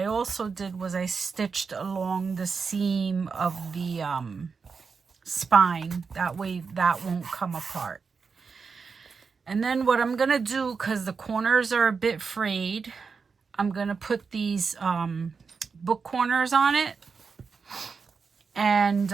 also did was I stitched along the seam of the spine. That way that won't come apart. And then what I'm going to do, because the corners are a bit frayed, I'm going to put these book corners on it. And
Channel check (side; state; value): left; quieter; 5.3 dB